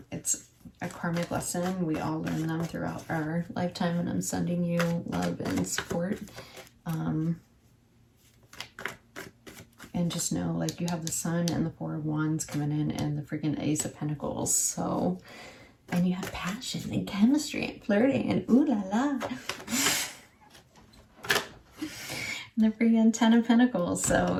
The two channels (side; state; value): both; identical; correlation 1.00